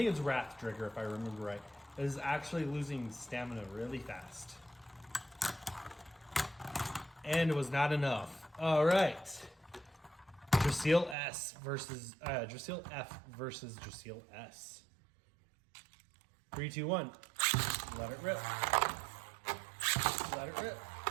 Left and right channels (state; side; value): drops out; left; at 11.2 s